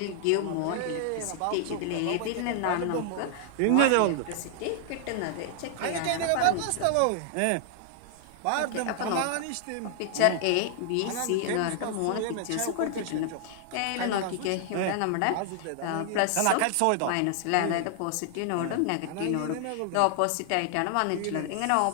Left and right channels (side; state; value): both; different; correlation 0.00